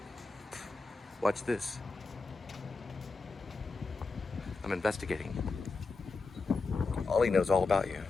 Watch this. I'm investigating. Ollie knows all about you.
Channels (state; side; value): quieter; right; 4.1 dB